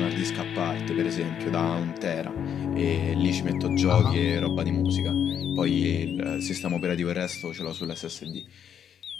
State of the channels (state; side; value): quieter; right; 8.6 dB